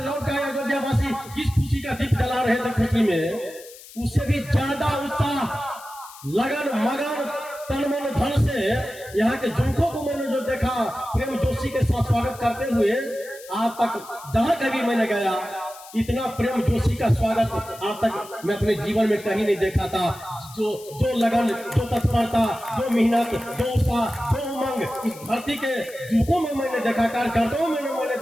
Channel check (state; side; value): noise; left; hiss, 18 dB below the sound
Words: लौट के अयोध्यावासी किस खुशी का दीप जला रहे थे, खुशी में उससे भी ज्यादा उत्साह, लगन, मगन, तन मन धन से यहाँ के जुमकों को मैंने जो देखा, प्रेम जोशी के साथ स्वागत करते हुए, आज तक जहां कभी मैंने गया, इतना प्रेम जोशी का स्वागत आज तक मैं अपने जीवन में कहीं नहीं देखा था। जो लगन, जो तत्परता, जो मेहनत, जो उत्साह, जो उमंग इस धरती के जुमकों में मैंने देखा, कार्यकर्ताओं में मैंने